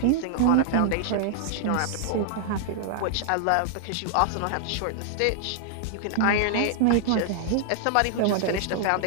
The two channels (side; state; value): both; different; correlation -0.01